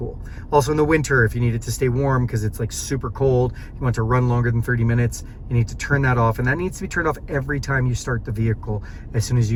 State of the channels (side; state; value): both; identical; correlation 1.00